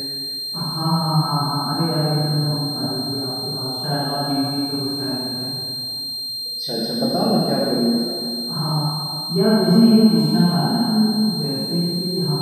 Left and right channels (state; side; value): identical; both; correlation 1.00